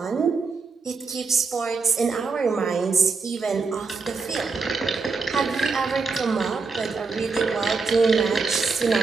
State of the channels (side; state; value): left; quieter; 4.5 dB